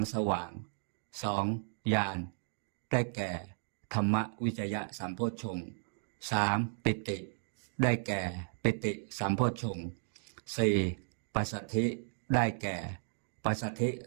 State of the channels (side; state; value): left; silent; digital silence